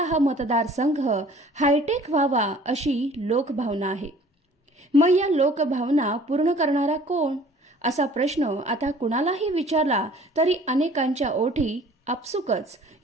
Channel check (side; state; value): both; normal; correlation 0.51